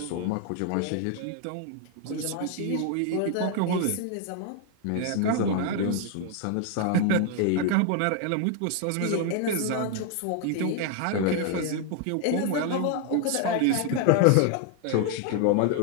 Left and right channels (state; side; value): different; both; correlation 0.00